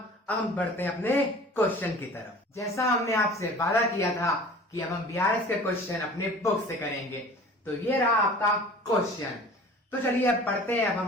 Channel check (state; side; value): normal; both; correlation 0.43